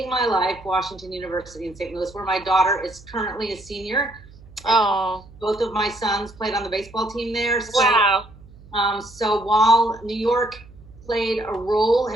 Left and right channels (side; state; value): right; noise; hum, 22 dB below the sound